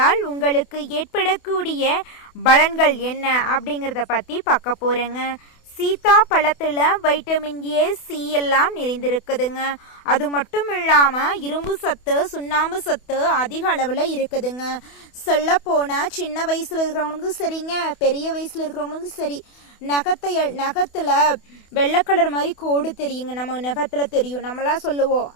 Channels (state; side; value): late; right; 28 ms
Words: உங்களுக்கு ஏற்படக்கூடிய பலன்கள் என்ன அப்படிங்கிறத பற்றி பார்க்க போகிறேங்க. சீத்தா பழத்தில் வைட்டமின் ஏ, சி எல்லாம் நிறைந்திருக்குதுங்க. அது மட்டும் இல்லாமல் இரும்பு சத்து, சுண்ணாம்பு சத்து அதிக அளவில் இருக்குதுங்க. சொல்ல போனால் சின்ன வயசில் இருக்கிறவங்களுக்கும் சரிங்க, பெரிய வயசில் இருக்கிறவங்களுக்கும் சரி, நகத்தில் வெள்ளை கலர் மாதிரி கோடு தெரியுங்க. நம்ம நகத்தில் தெரியும். நம்மளாம் சொல்லுவோம்,